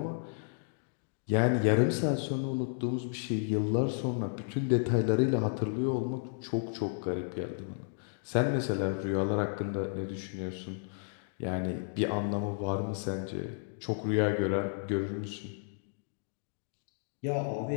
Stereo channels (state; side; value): silent; right; digital silence